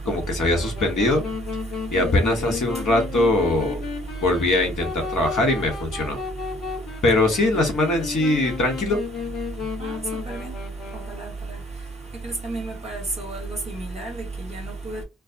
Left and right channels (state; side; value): normal; both; correlation 0.58